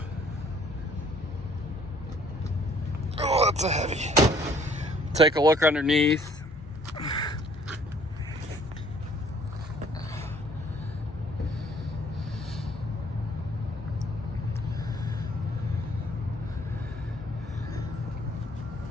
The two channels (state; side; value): normal; both; correlation 0.59